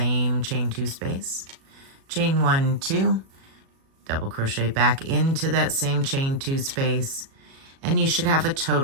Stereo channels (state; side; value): late; left; 37 ms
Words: chain 2 space, chain 1, 2, double crochet back into that same chain 2 space, and you should have a